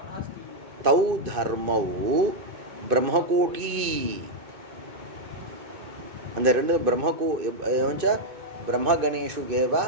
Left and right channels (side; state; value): left; late; 2.5 ms